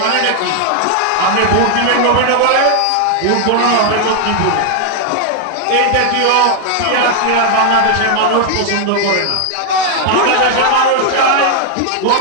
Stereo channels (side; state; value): both; different; correlation 0.00